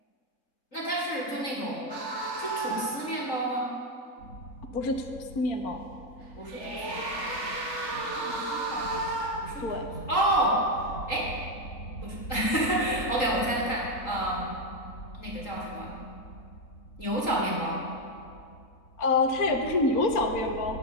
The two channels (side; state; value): right; late; 3.8 ms